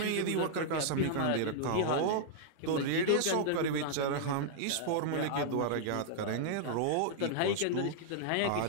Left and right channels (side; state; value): both; different; correlation -0.01